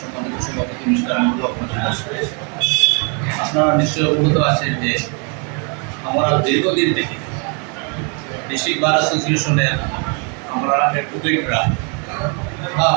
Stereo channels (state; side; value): quieter; left; 36.5 dB